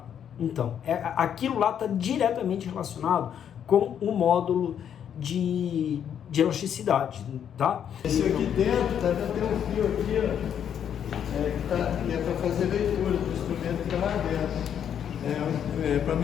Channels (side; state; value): right; quieter; 8.9 dB